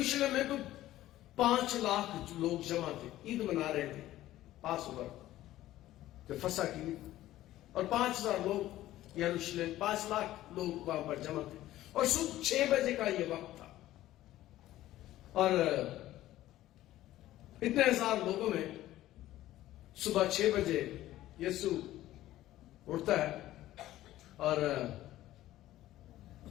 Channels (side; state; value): right; quieter; 14.7 dB